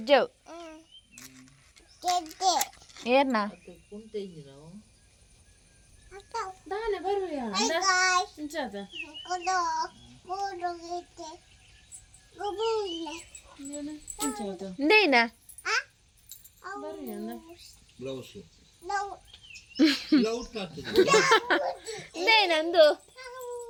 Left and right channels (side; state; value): both; identical; correlation 1.00